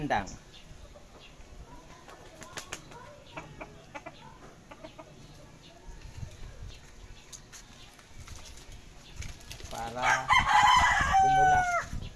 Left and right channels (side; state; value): both; identical; correlation 1.00